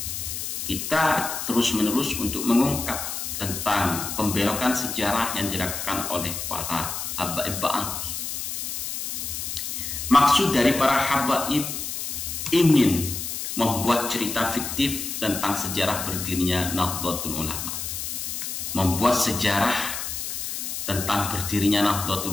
kita terus-menerus untuk mengungkap tentang pembelokan sejarah yang dilakukan oleh para habaib Ba'alwi. Maksud dari para habaib ingin membuat cerita fiktif tentang sejarah berdirinya Nahdlatul Ulama, membuat sejarah tentang berdirinya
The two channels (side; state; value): left; noise; hiss, 5 dB below the sound